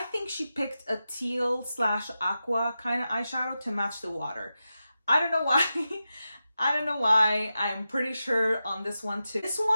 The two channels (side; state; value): both; inverted; correlation -0.91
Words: she picked a teal / aqua kind of eyeshadow to match the water. I don't know why. I don't know why. I'm pretty sure on this one too. This